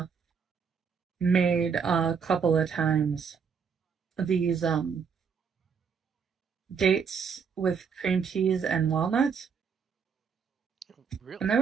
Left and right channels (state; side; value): quieter; left; 6.3 dB